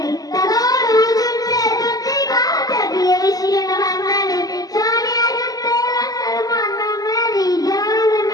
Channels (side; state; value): right; late; 0.18 ms